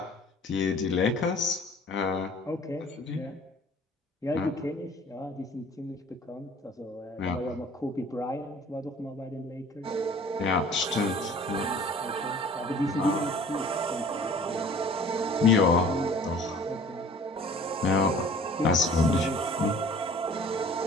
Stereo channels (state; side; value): normal; both; correlation 0.49